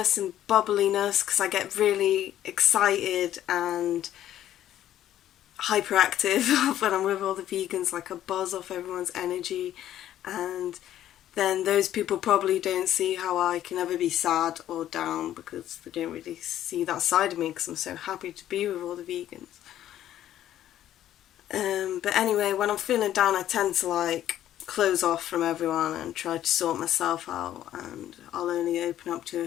and bubbliness, because I get really excited and hyperactive when I'm with all the vegans, like I buzz off everyone's energy, and then those people probably don't see how I can ever be sad or down because they don't really see that side of me because I'm so happy to be with all the vegans. But anyway, when I'm feeling down, I tend to like close off from everyone and try to sort myself out, and I'll only open up to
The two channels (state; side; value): quieter; right; 12.1 dB